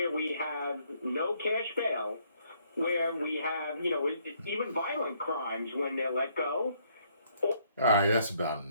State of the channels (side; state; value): both; inverted; correlation -0.68